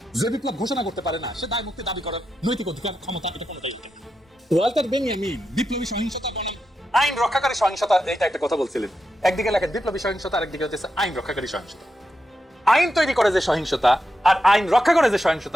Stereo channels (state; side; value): normal; both; correlation 0.87